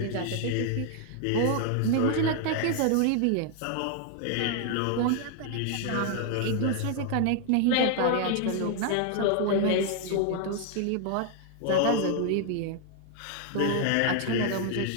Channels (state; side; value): different; both; correlation 0.00